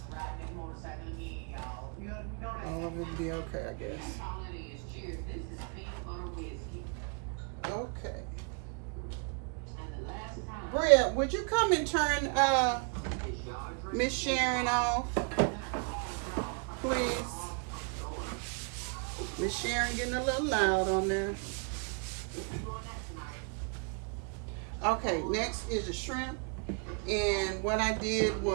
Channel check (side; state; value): left; quieter; 37.1 dB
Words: All of it will be okay, I guess. Okay. Bria, would you come and turn Miss Sharon off, please? Miss Sharon getting a little loud on there. Okay, next is the shrimp. And what I did